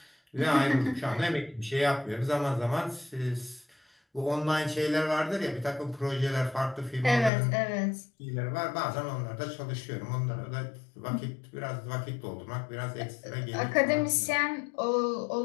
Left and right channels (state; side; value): drops out; right; at 7.3 s